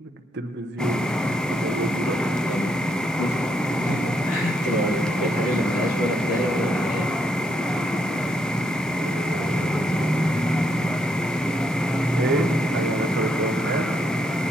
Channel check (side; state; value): both; normal; correlation 0.76